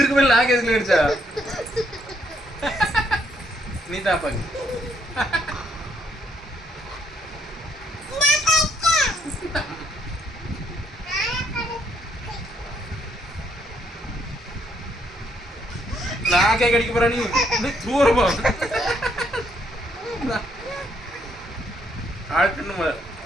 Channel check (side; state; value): both; normal; correlation 0.72